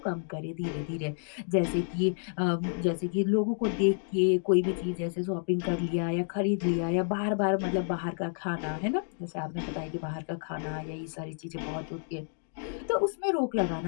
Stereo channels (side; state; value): right; silent; digital silence